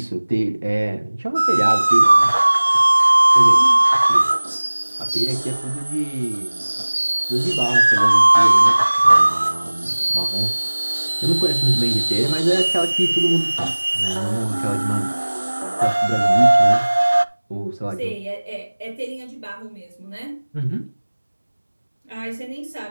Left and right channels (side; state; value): both; inverted; correlation -1.00